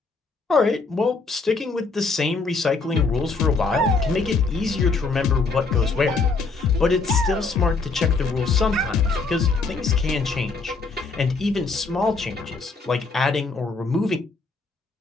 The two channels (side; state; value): right; quieter; 4.1 dB